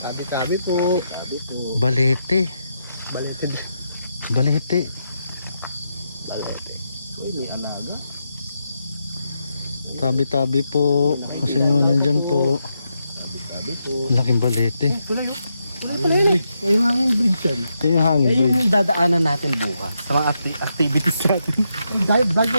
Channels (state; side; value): inverted; both; correlation -0.83